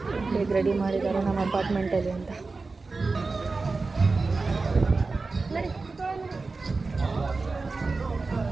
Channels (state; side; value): quieter; left; 3.9 dB